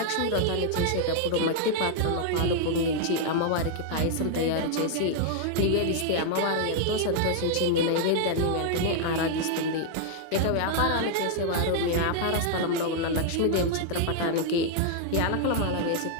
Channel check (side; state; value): both; different; correlation -0.01